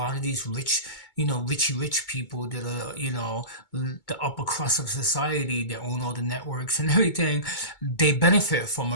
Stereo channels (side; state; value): right; late; 2.2 ms